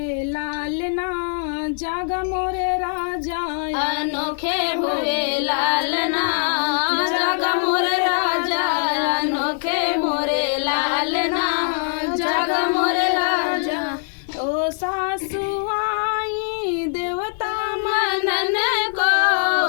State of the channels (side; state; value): right; silent; digital silence